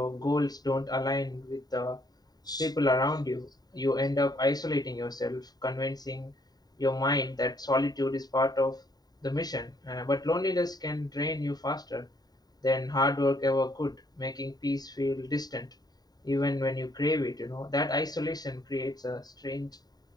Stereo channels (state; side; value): late; right; 0.19 ms